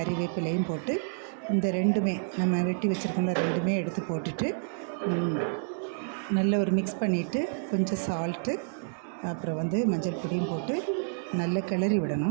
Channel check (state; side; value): silent; left; 58 dB below the other